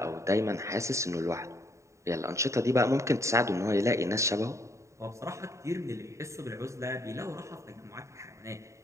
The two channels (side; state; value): left; late; 0.14 ms